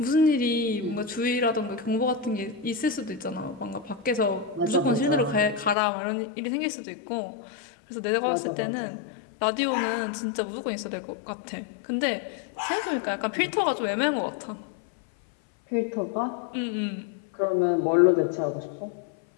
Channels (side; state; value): right; drops out; at 5.8 s